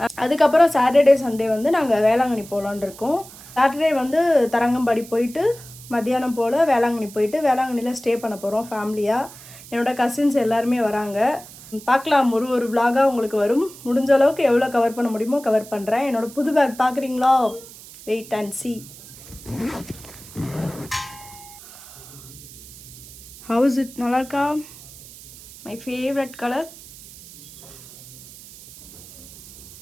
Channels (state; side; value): noise; right; hiss, 18 dB below the sound